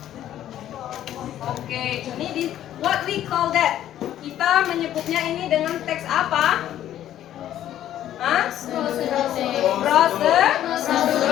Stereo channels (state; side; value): quieter; right; 11.9 dB